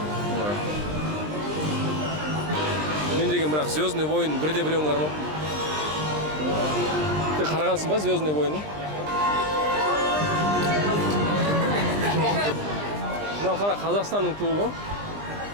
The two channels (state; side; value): late; left; 20 ms